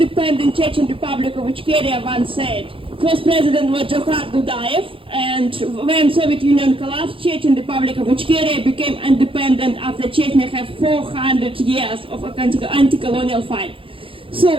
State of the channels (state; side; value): late; left; 0.26 ms